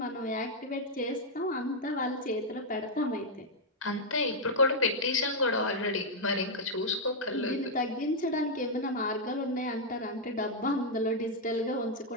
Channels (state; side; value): normal; both; correlation -0.03